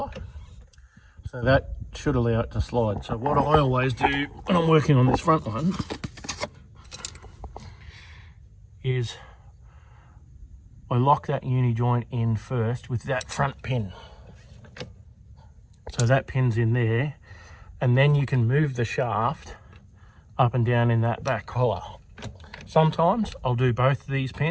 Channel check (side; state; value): both; identical; correlation 1.00